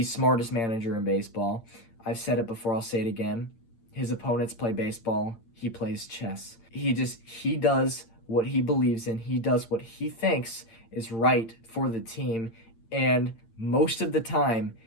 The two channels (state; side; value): late; right; 8.8 ms